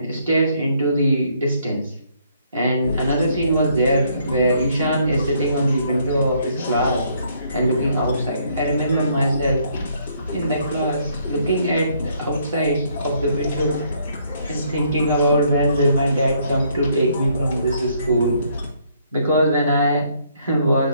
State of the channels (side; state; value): both; inverted; correlation -0.68